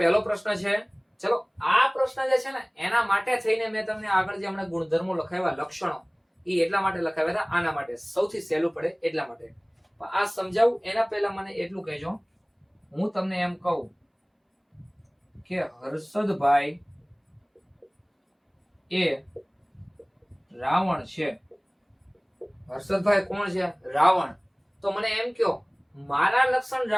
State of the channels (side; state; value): both; identical; correlation 1.00